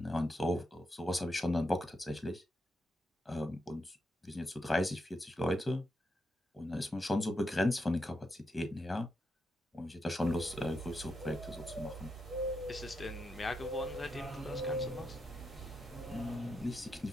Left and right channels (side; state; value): both; normal; correlation 0.84